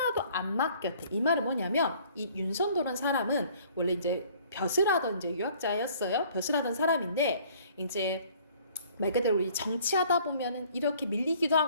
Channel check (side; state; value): both; inverted; correlation -0.56